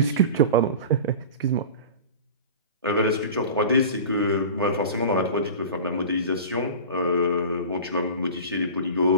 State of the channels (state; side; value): inverted; both; correlation -0.34